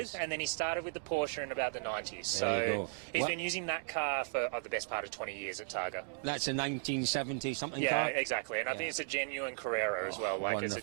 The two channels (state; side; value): silent; left; digital silence